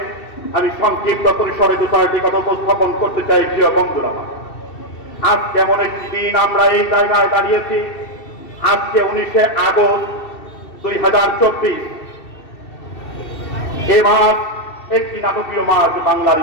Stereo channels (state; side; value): late; right; 2.7 ms